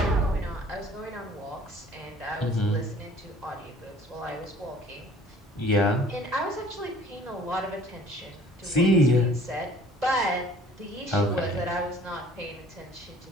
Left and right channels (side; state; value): both; normal; correlation 0.52